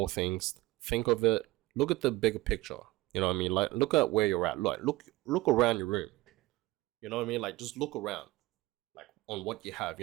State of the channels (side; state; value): left; quieter; 19.3 dB